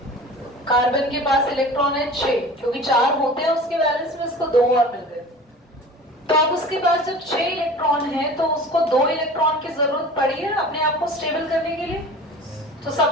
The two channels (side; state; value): both; normal; correlation 0.40